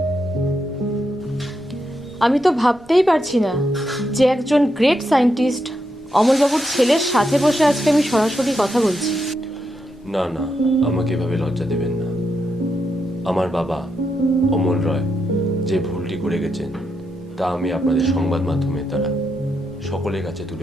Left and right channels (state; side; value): normal; both; correlation 0.83